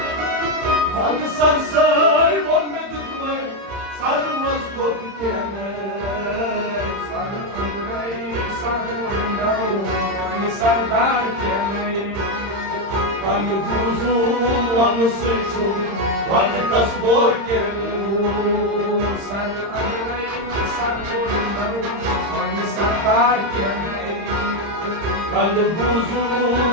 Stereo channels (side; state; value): left; late; 30 ms